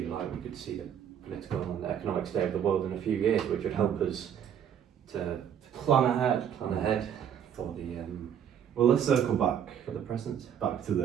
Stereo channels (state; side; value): quieter; left; 8.9 dB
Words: of light, we could see the political and economic state of the world in a few years, which would help us to Plan ahead. plan ahead for the Well, let's circle back present. to